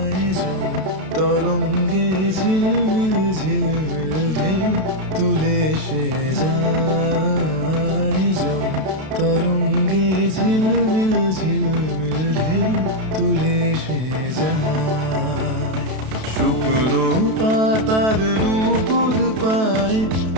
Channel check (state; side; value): late; left; 32 ms